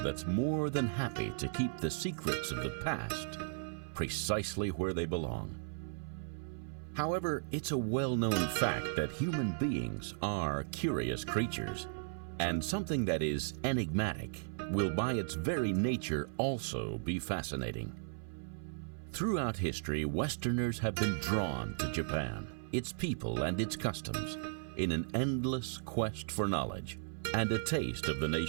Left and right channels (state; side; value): silent; left; 54 dB below the other